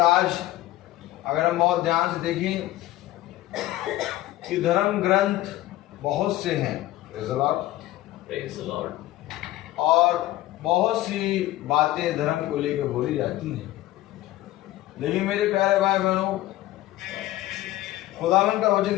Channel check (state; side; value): quieter; right; 15.8 dB